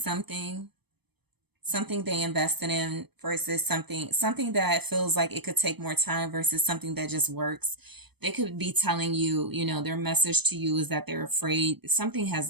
they invested in versus something that feels like it could take more time versus something that just works. They could be telling you, you know, their message to you is that they're afraid something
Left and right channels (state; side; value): late; left; 0.98 ms